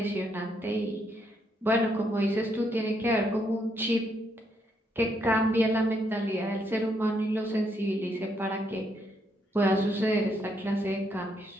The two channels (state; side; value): normal; both; correlation 0.75